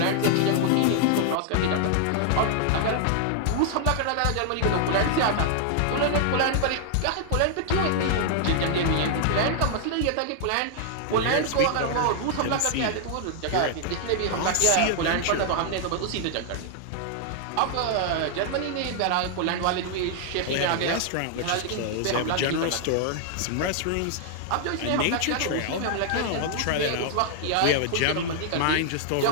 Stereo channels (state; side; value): different; both; correlation 0.00